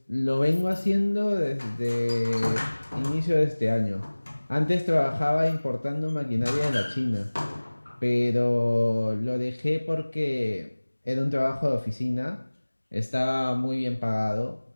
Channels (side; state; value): both; inverted; correlation -1.00